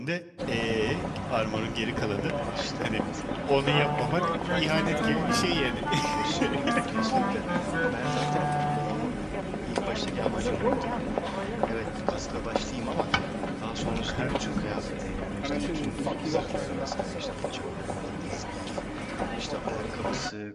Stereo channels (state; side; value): identical; both; correlation 1.00